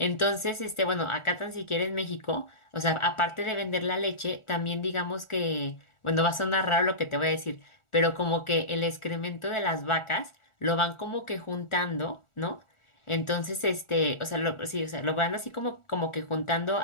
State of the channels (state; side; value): late; right; 1.4 ms